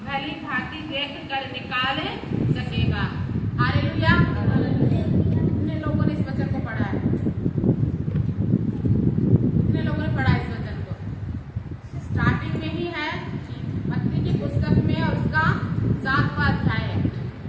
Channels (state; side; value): identical; both; correlation 1.00